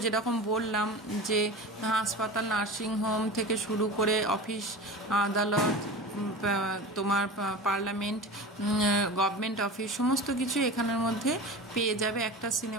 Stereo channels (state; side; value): normal; both; correlation 0.32